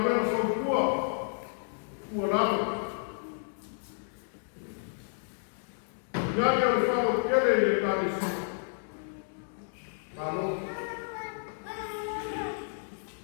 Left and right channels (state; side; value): silent; right; digital silence